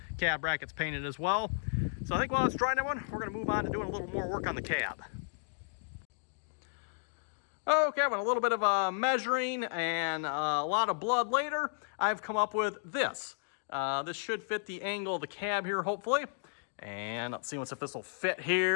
cab brackets painted as well. So I think while it's drying, everyone, we're going to move on to doing a little more work on the cab. Okay, with a little bit of measuring and a lot of blood later, I've come up with this. This should fit the angle of the cab here, hopefully. And let's see if this will fit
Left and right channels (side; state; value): right; silent; digital silence